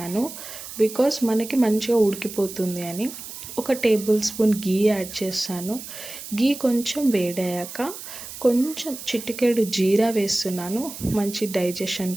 బికాస్ మనకి మంచిగా ఉడికిపోతుంది అని. ఒక tablespoon గీ యాడ్ చేస్తాను. గీ కొంచెం వేడయ్యాక కొంచెం చిటికెడు జీరా వేస్తున్నాను, మంచి డైజెషన్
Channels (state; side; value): noise; right; hiss, 11 dB below the sound